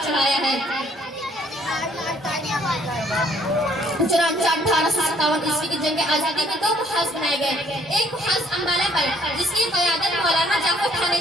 چڑھایا ہے. چنانچہ 1857 عیسوی کی جنگ آزادی میں 2 محاذ بنائے گئے. ایک محاذ امبالہ پر جس کی قیادت مولانا جعفر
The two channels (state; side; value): normal; both; correlation 0.63